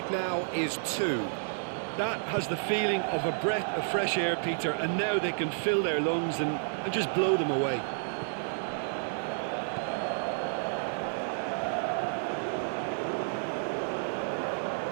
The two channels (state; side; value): silent; left; digital silence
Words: now is 2. That has the feeling of a breath of fresh air, Peter, and now they can fill their lungs and just blow them away.